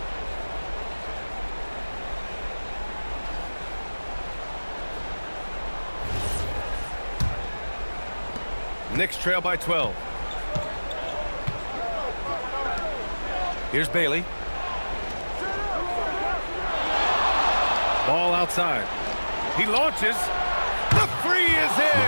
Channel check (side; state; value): both; inverted; correlation -1.00